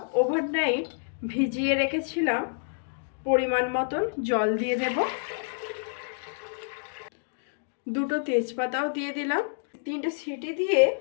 ওভারনাইট ভিজিয়ে রেখেছিলাম। পরিমাণ মতন জল দিয়ে দেব। দুটো তেজপাতাও দিয়ে দিলাম। 3টে সিটি দিয়ে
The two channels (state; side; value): silent; right; digital silence